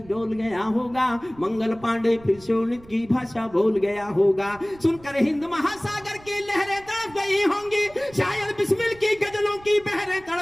डोल गया होगा। मंगल पांडे फिर शोणित की भाषा बोल गया होगा। सुनकर हिंद महासागर की लहरें तड़प गई होंगी, शायद बिस्मिल की गजलों की बहरें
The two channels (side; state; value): right; noise; rumble, 23 dB below the sound